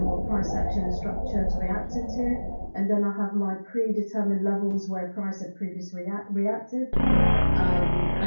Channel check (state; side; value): inverted; both; correlation -1.00